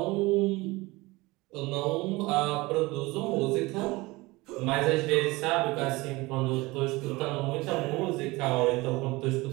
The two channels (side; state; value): left; quieter; 22.0 dB